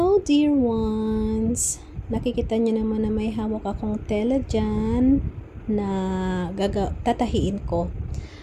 dear ones! Nakikita niyo naman na may hawak akong tela dyan na tatahiin ko.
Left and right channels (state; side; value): identical; both; correlation 1.00